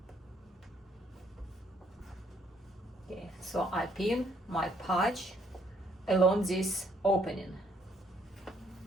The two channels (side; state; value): both; normal; correlation 0.67